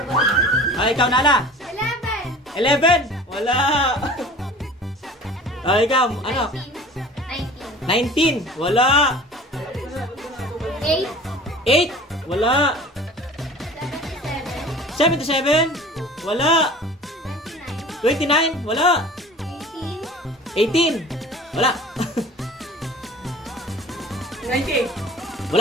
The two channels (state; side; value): normal; both; correlation 0.43